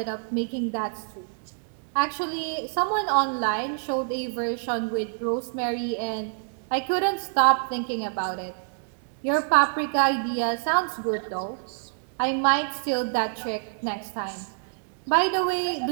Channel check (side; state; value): left; silent; digital silence